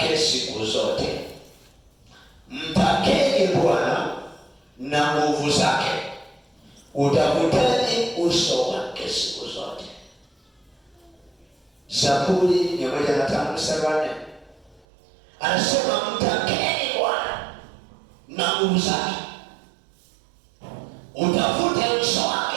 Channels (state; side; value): drops out; left; at 14.9 s